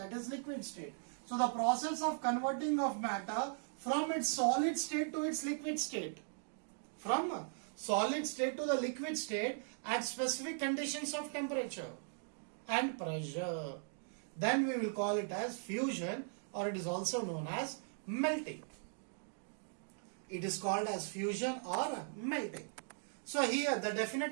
is liquid state. So the process of converting of matter from its solid state to its liquid state. From solid state to the liquid state at specific conditions of temperature and pressure. Then we will call it as fusion, or it is also known as melting. It is called as fusion or melting. So here the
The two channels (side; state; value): left; silent; digital silence